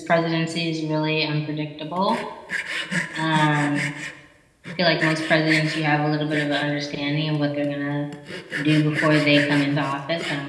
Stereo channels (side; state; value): both; identical; correlation 1.00